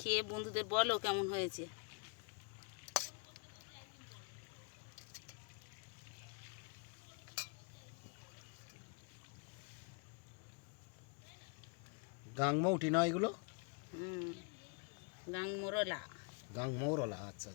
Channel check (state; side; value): quieter; right; 37.2 dB